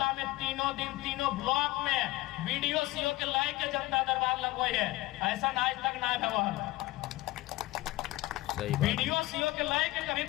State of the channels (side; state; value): right; quieter; 18.8 dB